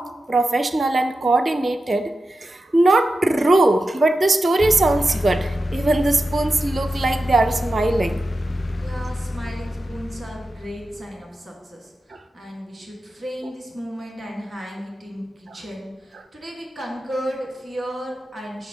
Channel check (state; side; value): normal; both; correlation 0.92